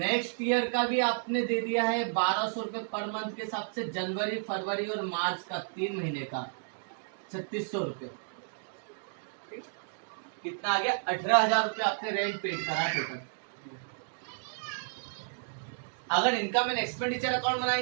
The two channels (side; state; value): left; silent; digital silence